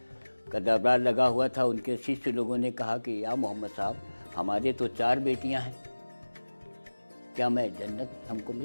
का दरबार लगा हुआ था। उनके शिष्य लोगों ने कहा कि या मोहम्मद साहब, हमारे तो 4 बेटियां हैं, क्या मैं जन्नत हमको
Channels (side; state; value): both; inverted; correlation -1.00